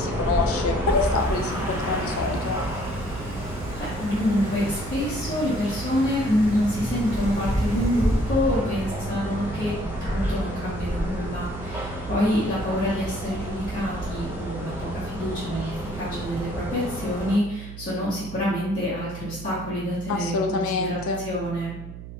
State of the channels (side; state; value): right; noise; hum, 12 dB below the sound